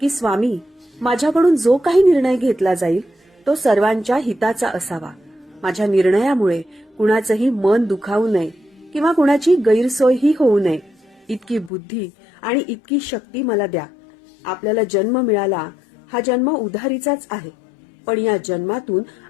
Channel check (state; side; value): drops out; right; at 11.7 s